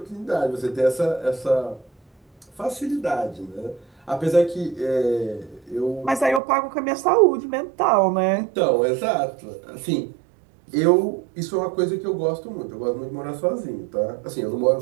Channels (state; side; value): drops out; left; at 6.4 s